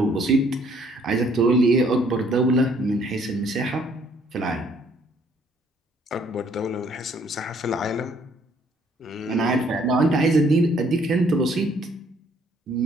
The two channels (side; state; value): both; normal; correlation 0.63